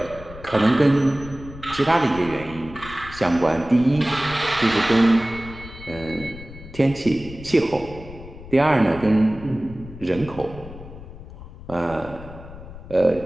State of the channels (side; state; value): left; noise; rumble, 15 dB below the sound